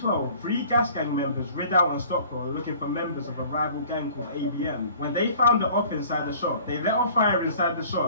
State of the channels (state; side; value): inverted; both; correlation -0.49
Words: 3 gas gang members rid out on Stockwell looking for members of a rival gang called ABM. When they found the op inside the shop, they let off fire inside the